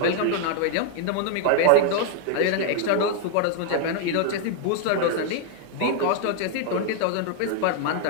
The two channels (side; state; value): both; different; correlation 0.00